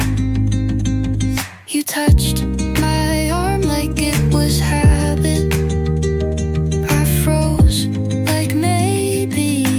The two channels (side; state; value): both; identical; correlation 1.00